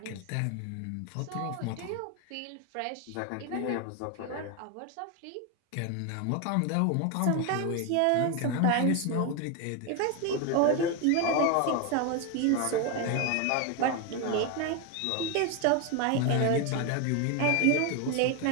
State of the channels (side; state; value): both; different; correlation 0.02